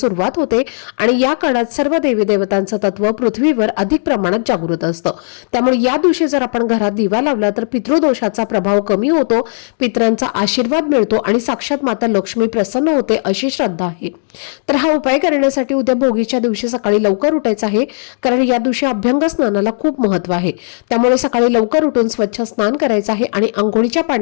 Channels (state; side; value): silent; right; digital silence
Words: होते आणि या काळात सर्व देवी देवतांचं तत्व पृथ्वीवर अधिक प्रमाणात जागृत असतं. त्यामुळे या दिवशी जर आपण घरात दिवा लावला तर पितृदोषाचा प्रभाव कमी होतो, पितरांचा आशीर्वाद मिळतो आणि साक्षात माता लक्ष्मी प्रसन्न होते अशी श्रद्धा आहे. तर हा उपाय करण्यासाठी उद्या भोगीच्या दिवशी सकाळी सकाळी लवकर उठायचं आहे, कारण या दिवशी अभ्यंग स्नानाला खूप महत्त्व आहे. त्यामुळे सकाळी लवकर उठून स्वच्छ स्नान करायचं आहे आणि अंघोळीच्या